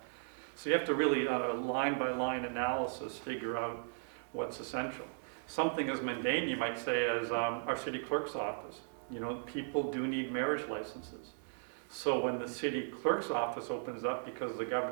So you have to really, on a line-by-line analysis, figure out what's essential. Something as mundane, you might say, as our city clerk's office. You know, people do need marriage licenses. So when the city clerk's office opens up, because the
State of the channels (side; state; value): left; silent; 53 dB below the other